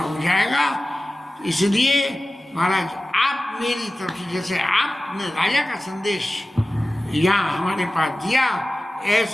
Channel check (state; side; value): normal; both; correlation 0.96